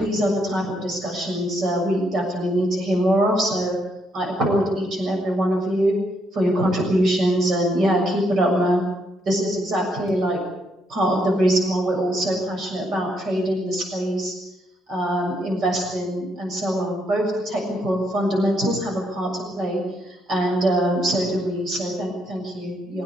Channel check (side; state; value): both; normal; correlation 0.75